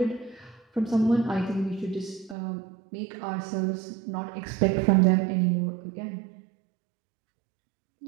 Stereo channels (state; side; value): drops out; left; at 2.4 s